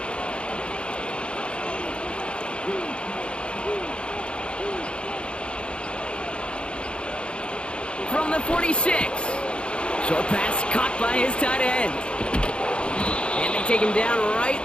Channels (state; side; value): late; right; 0.056 ms